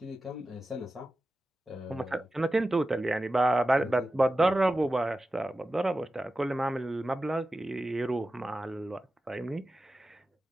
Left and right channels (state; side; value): normal; both; correlation 0.93